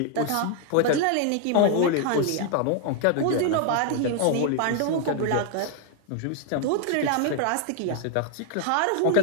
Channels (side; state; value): both; different; correlation 0.00